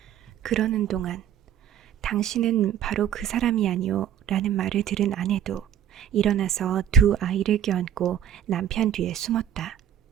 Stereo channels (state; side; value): quieter; left; 9.8 dB